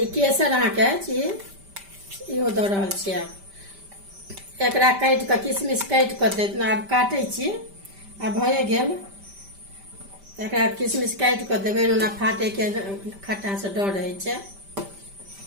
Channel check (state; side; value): late; left; 5.1 ms